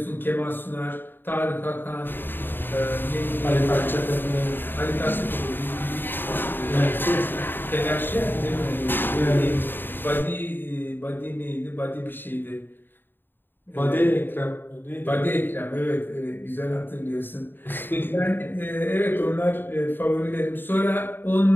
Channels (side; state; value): right; late; 0.095 ms